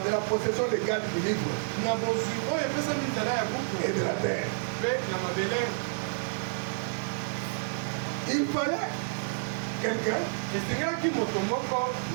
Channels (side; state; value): left; silent; digital silence